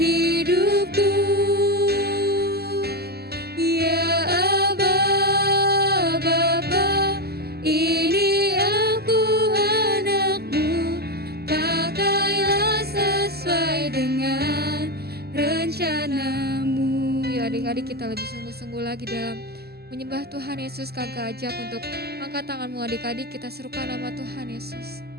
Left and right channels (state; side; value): late; left; 0.46 ms